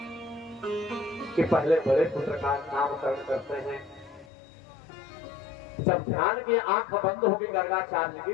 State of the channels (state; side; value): drops out; right; at 4.2 s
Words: कि पहले बड़े पुत्र का नामकरण करते हैं। जब ध्यान की आंख बंद होगी गर्गाचार्य